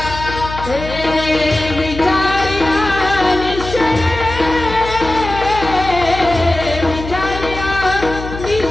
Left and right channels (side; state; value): left; noise; hum, 10 dB below the sound